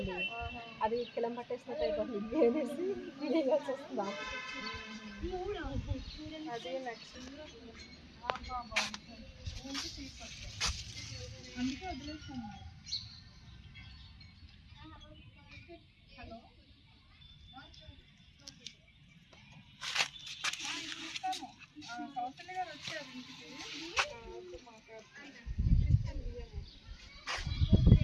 అది కిలం పట్టేసినట్టు అయిపోతుంది. ఇడ్లీ వేసి వేయాల్సి వస్తుందా? అది నెక్స్ట్ అందుకే వదిలేస్తాను. హలో, కౌశల్య గారు వచ్చారు ఇంటికి.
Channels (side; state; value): both; identical; correlation 1.00